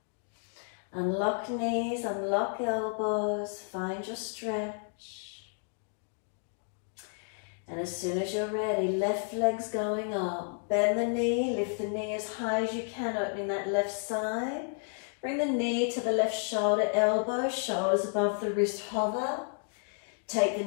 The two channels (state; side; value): silent; right; 57 dB below the other